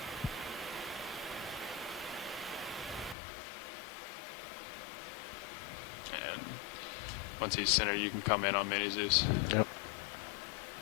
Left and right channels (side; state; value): right; drops out; at 3.2 s